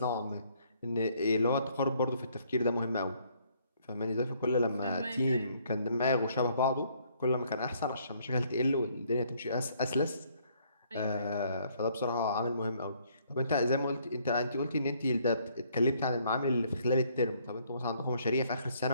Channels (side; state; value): both; inverted; correlation -0.66